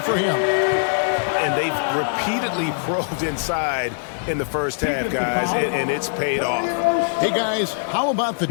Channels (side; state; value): right; silent; 64 dB below the other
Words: him. And they've repeatedly probed inside in the first half, guys, and it's paid off. Hey, guys, how about the